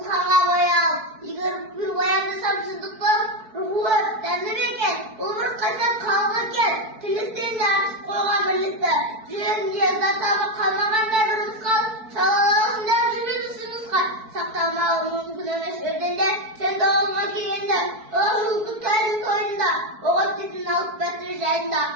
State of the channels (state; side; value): late; left; 4.6 ms